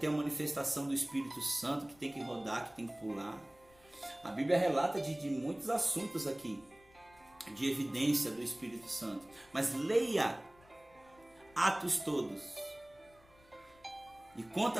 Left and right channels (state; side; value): noise; left; rumble, 28 dB below the sound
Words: uma manifestação do Espírito Santo, que tem que rodar, que tem que pular. A Bíblia relata de muitos assuntos aqui, de evidência do Espírito Santo. Mas leia Atos todos. E